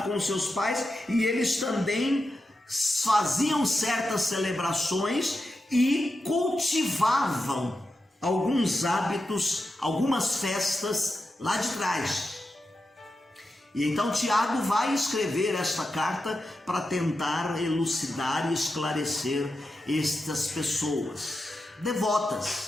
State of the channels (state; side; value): normal; both; correlation 0.89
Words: com seus pais e eles também faziam certas celebrações e cultivavam alguns hábitos, algumas festas lá de trás. E então Tiago vai escrever esta carta para tentar elucidar e esclarecer estas pessoas